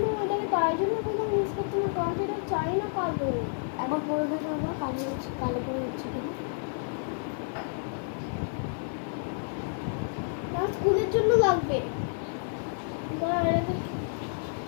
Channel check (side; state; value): right; silent; 58 dB below the other